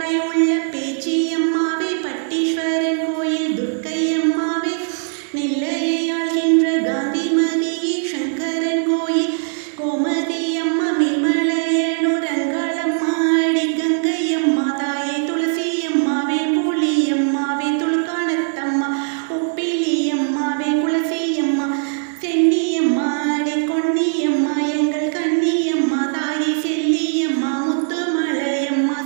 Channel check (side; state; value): left; silent; digital silence